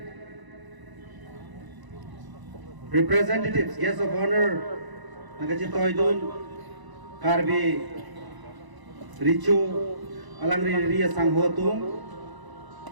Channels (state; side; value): late; left; 1.0 ms